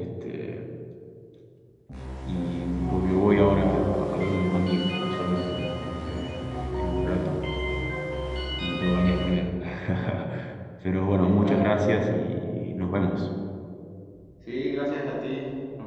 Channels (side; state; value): both; identical; correlation 1.00